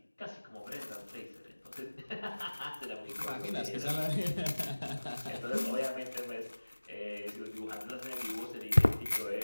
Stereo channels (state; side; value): inverted; both; correlation -1.00